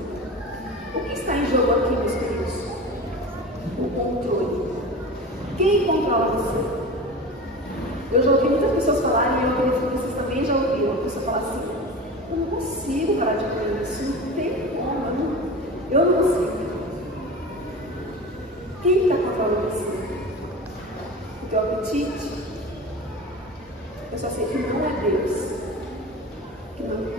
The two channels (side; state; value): both; normal; correlation 0.31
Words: O que está em jogo aqui, meus queridos? O controle. Quem controla você? Eu já ouvi muitas pessoas falarem, e eu acredito que vocês também já ouviram. apetite, eu só sei que não é Deus. Que